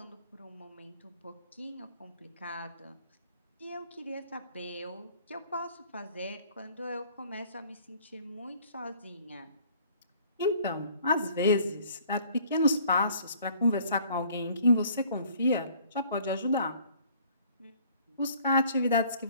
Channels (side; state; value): both; inverted; correlation -0.56